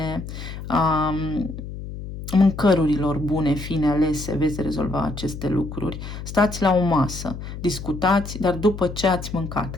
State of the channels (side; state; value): left; noise; hum, 9 dB below the sound